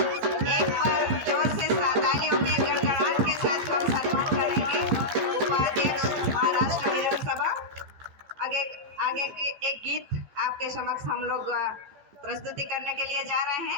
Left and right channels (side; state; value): left; late; 14 ms